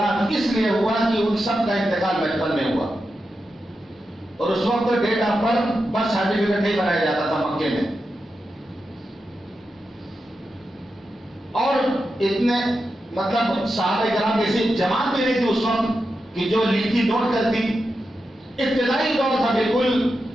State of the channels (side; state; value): both; normal; correlation 0.89